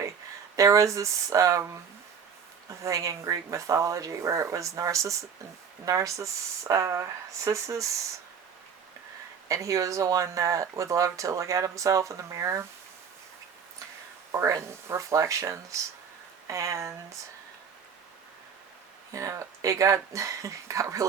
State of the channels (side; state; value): left; quieter; 6.8 dB